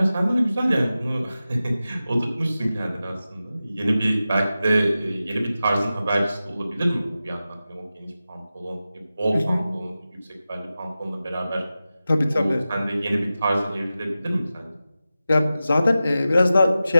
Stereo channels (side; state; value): both; inverted; correlation -0.94